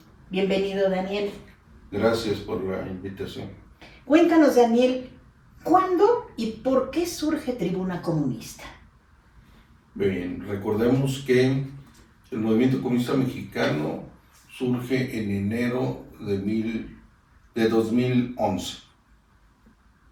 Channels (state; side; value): identical; both; correlation 1.00